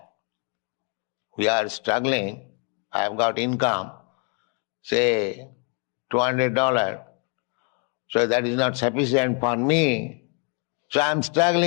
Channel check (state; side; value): quieter; right; 35.8 dB